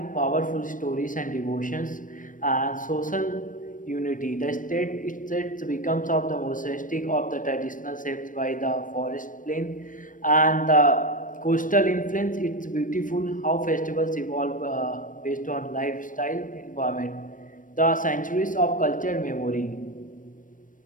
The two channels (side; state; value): right; late; 0.38 ms